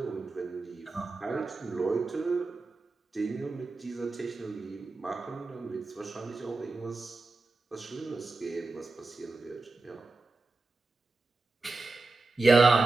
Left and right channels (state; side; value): quieter; left; 3.4 dB